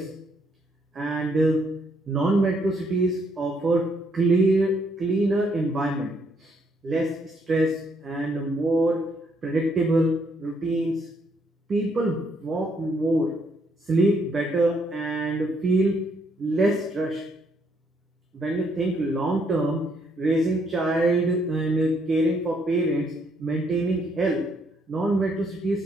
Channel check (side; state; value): both; normal; correlation 0.71